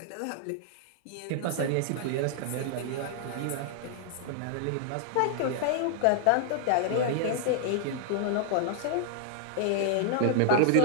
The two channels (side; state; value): both; different; correlation -0.01